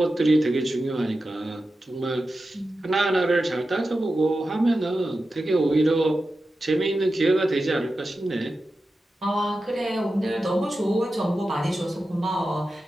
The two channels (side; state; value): both; normal; correlation 0.92